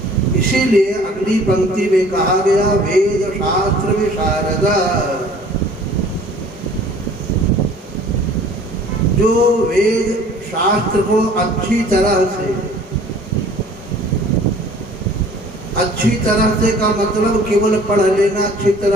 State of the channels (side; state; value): both; normal; correlation 0.51